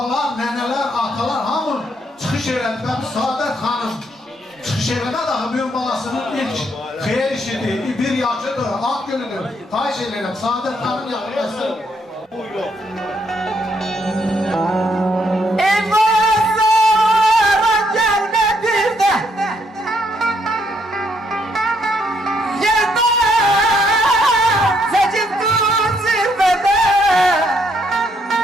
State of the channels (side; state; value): both; normal; correlation 0.73